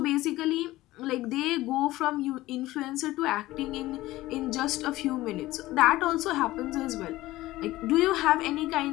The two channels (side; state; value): right; quieter; 17.2 dB